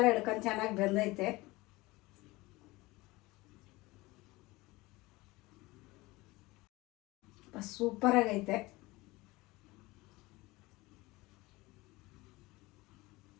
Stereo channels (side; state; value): right; quieter; 21.3 dB